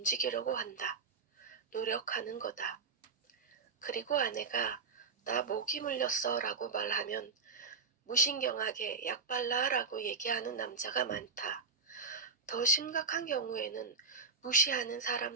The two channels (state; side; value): quieter; left; 4.8 dB